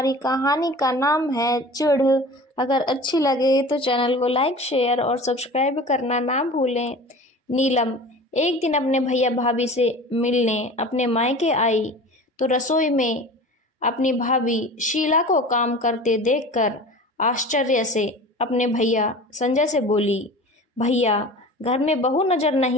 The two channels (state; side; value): normal; both; correlation 0.38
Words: कहानी का नाम है चिढ़। अगर अच्छी लगे तो चैनल को लाइक शेयर और सब्सक्राइब करना ना भूलें। नीलम एक दिन अपने भैया भाभी से मिलने अपने मायके आई तो रसोई में अपनी भाभी शीला को काम करते देखकर आश्चर्य से अपने भैया संजय से बोली, भैया घर में बहू नजर